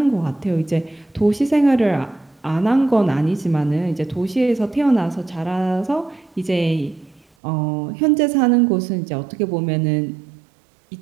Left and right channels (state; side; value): drops out; left; at 7.2 s